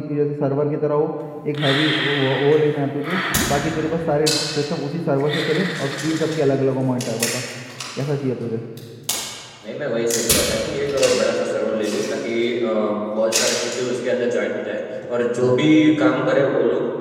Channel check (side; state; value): both; identical; correlation 1.00